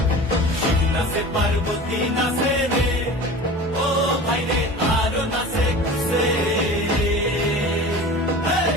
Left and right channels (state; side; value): normal; both; correlation 0.37